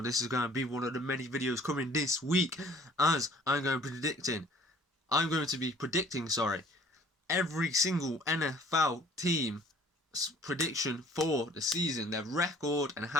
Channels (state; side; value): normal; both; correlation 0.53